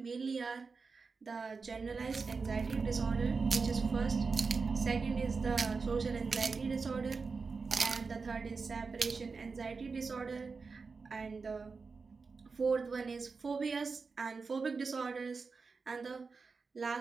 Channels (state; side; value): quieter; left; 4.6 dB